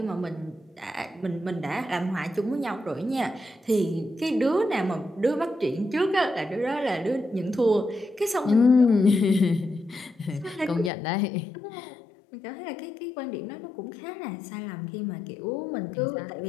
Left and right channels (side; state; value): right; drops out; at 10.9 s